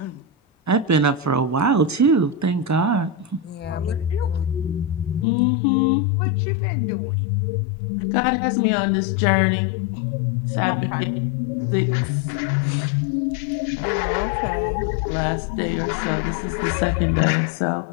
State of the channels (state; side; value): drops out; right; at 5.2 s